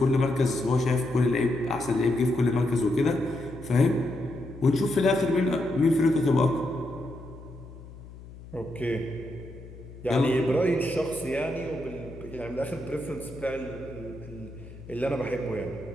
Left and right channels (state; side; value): noise; left; hum, 16 dB below the sound